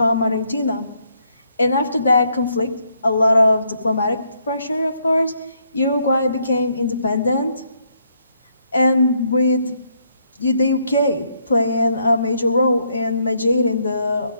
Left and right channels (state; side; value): inverted; both; correlation -0.73